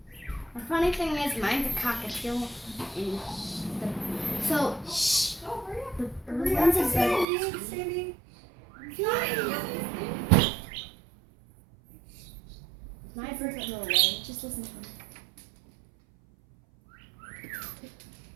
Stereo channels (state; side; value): drops out; left; at 7.2 s